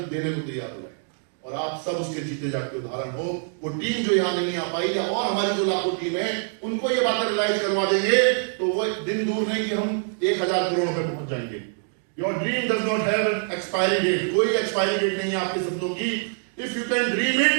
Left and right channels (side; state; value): left; silent; digital silence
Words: को तैयार हो जाए। और आप सब उसके जीते जाके उदाहरण हो। वो टीम जो यहाँ नहीं आ पाई, या और हमारी जो लाखों टीम है, उनको ये बातें रियलाइज करवा देंगे, तो वो दिन दूर नहीं कि हम 1000 करोड़ पे पहुंच जाएंगे। Your dream does not have an expiry date. कोई एक्सपायरी डेट नहीं है आपके सपनों की। If you can dream it,